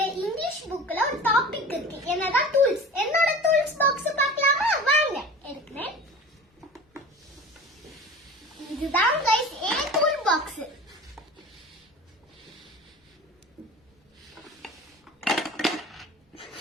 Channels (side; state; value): both; normal; correlation 0.37